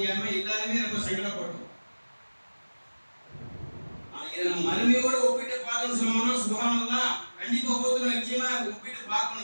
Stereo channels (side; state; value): both; inverted; correlation -1.00